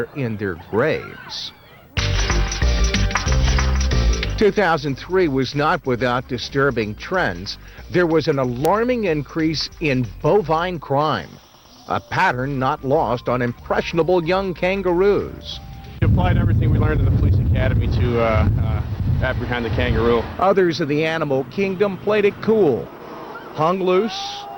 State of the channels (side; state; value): both; identical; correlation 1.00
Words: in their graves. 2003 was not without disturbing trends. There was an alarming increase in bovine crime, a pattern not lost on impressionable young kangaroos. We applied everything we learned in the police academy to apprehend the kangaroo. Others of the animal kingdom played it cool, hung loose,